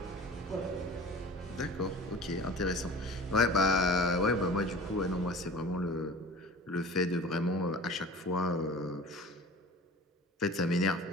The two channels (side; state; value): both; normal; correlation 0.40